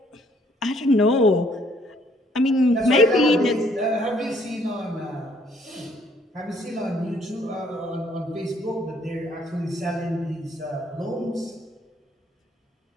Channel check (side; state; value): both; normal; correlation 0.64